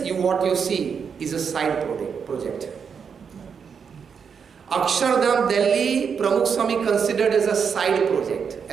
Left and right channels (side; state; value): left; quieter; 6.5 dB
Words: what you see, is a side project. Akshardham Delhi, Pramukh Swami considered as a side project,